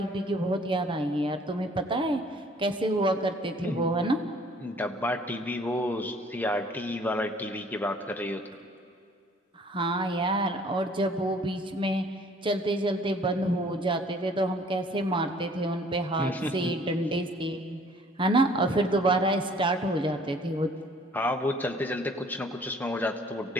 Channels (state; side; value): normal; both; correlation 0.56